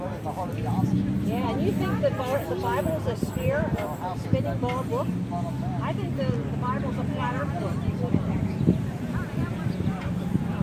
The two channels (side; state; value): both; identical; correlation 1.00